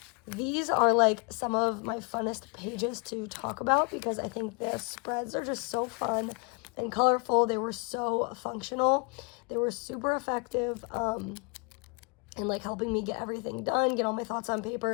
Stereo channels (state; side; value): quieter; right; 34.3 dB